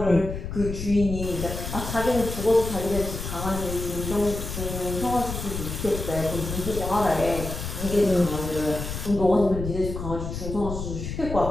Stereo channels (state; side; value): noise; left; rumble, 6 dB below the sound